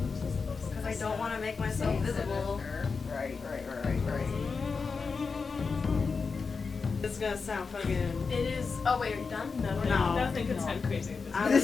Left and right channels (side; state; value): right; quieter; 4.9 dB